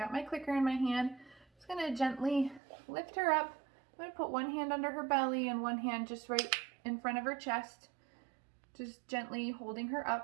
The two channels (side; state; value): left; drops out; at 2.6 s